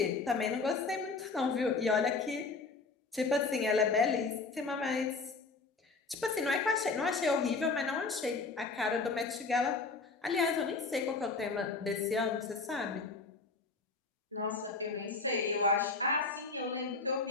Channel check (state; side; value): quieter; right; 4.1 dB